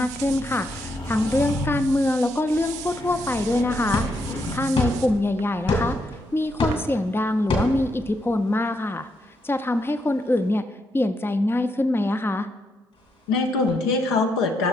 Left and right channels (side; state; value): both; normal; correlation 0.79